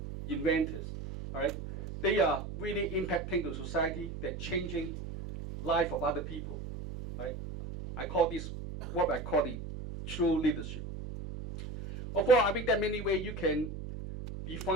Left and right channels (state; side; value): noise; right; hum, 8 dB below the sound